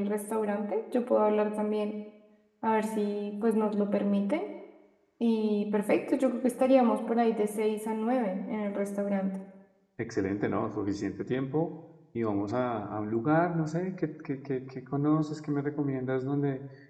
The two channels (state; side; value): identical; both; correlation 1.00